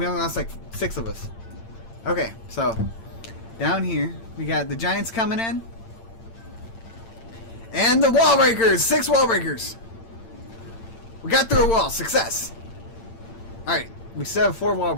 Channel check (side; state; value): right; late; 8.8 ms